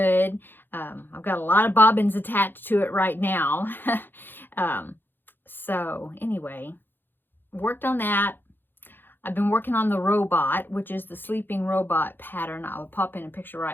I've got a lot of bobbins attached to it right now. So anyway, worked on that. I've been working on the robot, which is the sleeping robot pattern. I'll pop in a picture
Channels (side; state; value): right; late; 0.098 ms